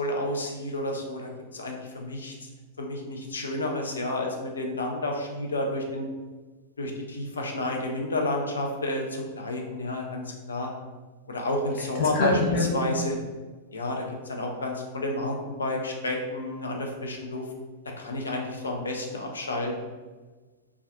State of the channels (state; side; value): inverted; both; correlation -0.31